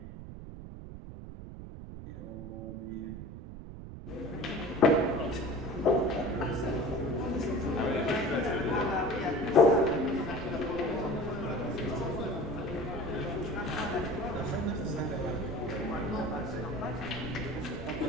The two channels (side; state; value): right; noise; rumble, 11 dB below the sound